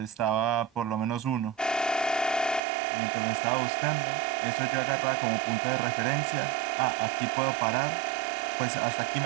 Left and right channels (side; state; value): left; drops out; at 2.6 s